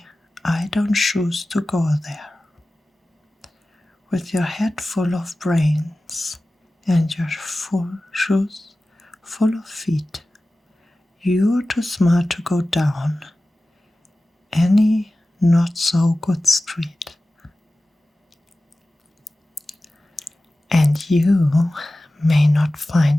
I don't choose to go there. With your head full of brains and your shoes full of feet, you're too smart to go down any not so good street. And you may not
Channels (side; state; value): both; normal; correlation 0.96